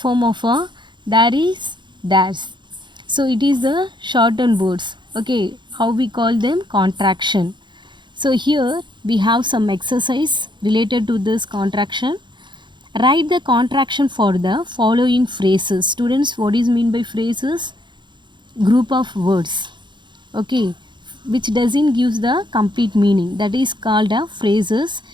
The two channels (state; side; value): late; left; 0.22 ms